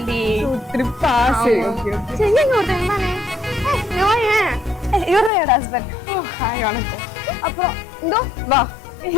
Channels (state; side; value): drops out; right; at 5.3 s